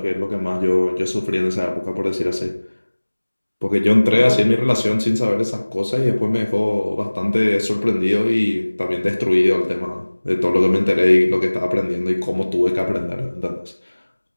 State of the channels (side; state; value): both; inverted; correlation -1.00